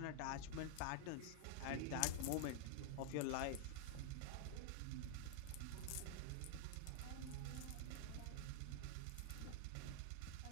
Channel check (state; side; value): different; both; correlation -0.01